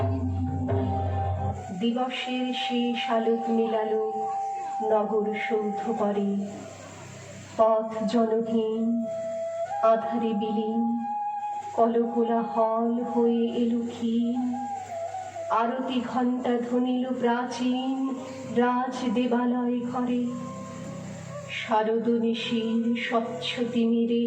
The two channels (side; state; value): both; identical; correlation 1.00